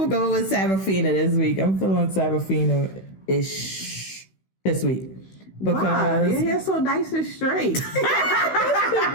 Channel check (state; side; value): late; right; 16 ms